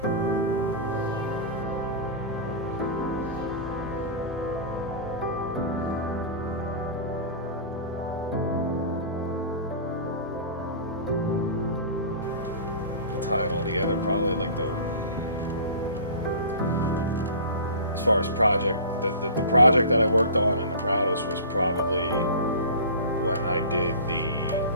To tie it all together, probably like as far as project, the project that I worked on and the proudest was probably when I did the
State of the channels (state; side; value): inverted; both; correlation -0.36